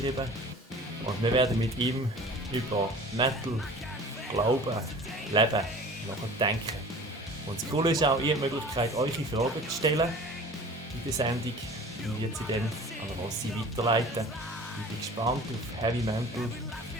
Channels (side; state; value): both; normal; correlation 0.43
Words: Und wir werden mit ihm über Metal, Glauben, Leben nachdenken. Und das Coole ist auch, ihr habt die Möglichkeit, eure Fragen zu stellen in der Sendung. Ich werde sie dann an Rossi weiterleiten. Ich bin gespannt auf Heavy Mental